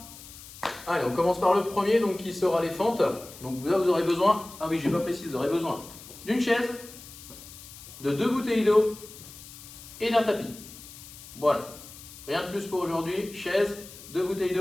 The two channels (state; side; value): noise; left; hiss, 16 dB below the sound